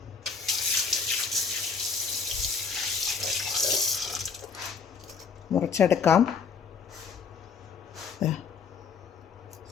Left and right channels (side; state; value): right; quieter; 5.6 dB